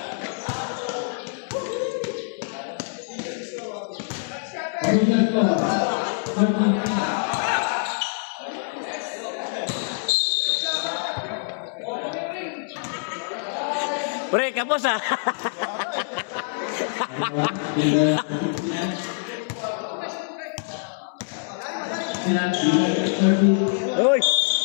Pre, kapos ah. Uy.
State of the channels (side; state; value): right; silent; 62 dB below the other